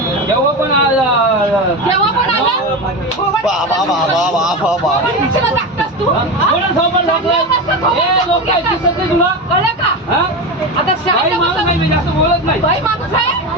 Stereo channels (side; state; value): both; normal; correlation 0.20